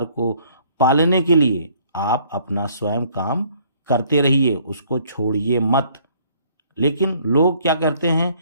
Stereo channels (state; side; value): inverted; both; correlation -0.60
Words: को पालने के लिए आप अपना स्वयं काम करते रहिए, उसको छोड़िए मत। लेकिन लोग क्या करते हैं